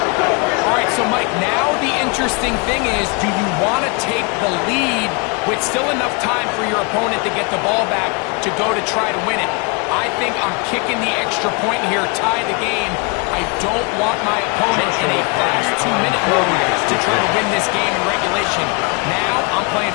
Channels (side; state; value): right; quieter; 31.5 dB